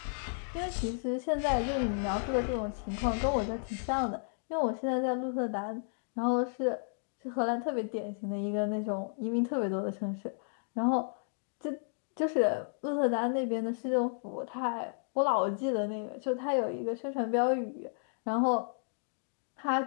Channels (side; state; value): right; silent; digital silence